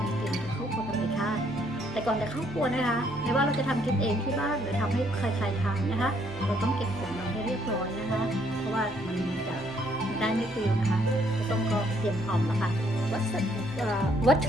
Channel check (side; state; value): both; normal; correlation 0.68